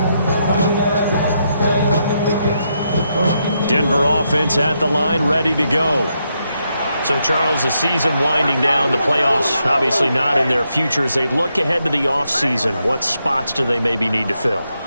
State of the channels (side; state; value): both; inverted; correlation -0.80